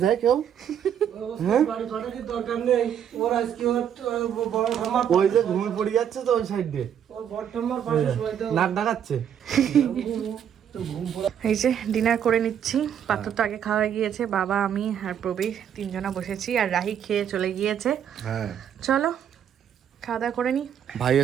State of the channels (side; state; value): left; quieter; 9.0 dB